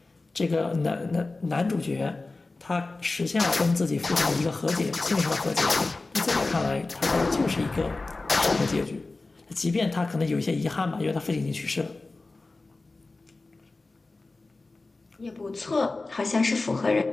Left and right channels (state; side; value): quieter; right; 3.4 dB